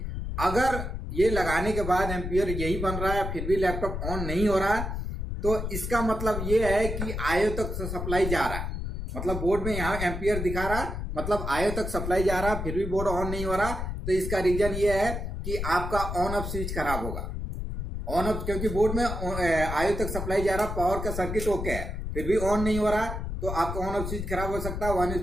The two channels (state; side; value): noise; left; rumble, 4 dB below the sound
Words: अगर ये लगाने के बाद एम्पियर यही बन रहा है फिर भी लैपटॉप ऑन नहीं हो रहा तो इसका मतलब ये है कि आईओ तक सप्लाई जा रहा है, मतलब बोर्ड में यहाँ एम्पियर दिखा रहा मतलब आईओ तक सप्लाई जा रहा फिर भी बोर्ड ऑन नहीं हो रहा। तो इसका रीजन ये है कि आपका ऑन ऑफ स्विच खराब होगा। ऑन ऑफ, क्योंकि बोर्ड में आईओ तक सप्लाई जा रहा, पावर का सर्किट ओके है फिर भी ऑन नहीं हो रहा तो आपका ऑन ऑफ स्विच खराब हो सकता है। ऑन